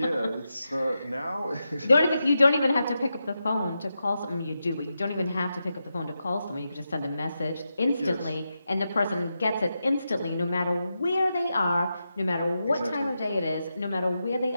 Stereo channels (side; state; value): both; inverted; correlation -0.88